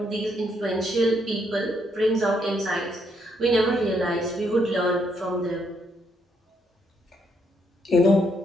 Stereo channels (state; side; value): normal; both; correlation 0.74